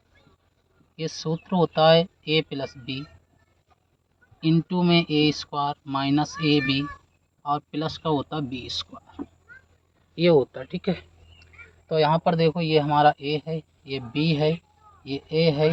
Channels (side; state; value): both; identical; correlation 1.00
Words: ये सूत्र होता है ए प्लस बी इंटू में ए स्क्वायर माइनस ए बी और प्लस का होता है बी स्क्वायर, ये होता है। ठीक है। तो यहाँ पर देखो, ये हमारा ए है, ये बी है, ये ए है,